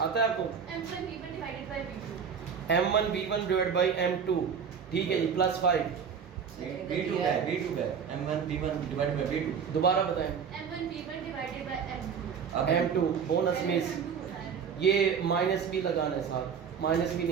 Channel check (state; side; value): quieter; left; 6.9 dB